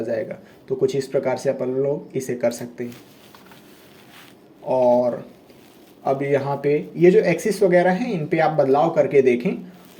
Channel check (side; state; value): both; identical; correlation 1.00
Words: जाएगा। तो कुछ इस प्रकार से अपन लोग इसे कर सकते हैं। और अब यहाँ पे ये जो एक्सिस वगैरह हैं इन पे आप बदलाव करके देखें,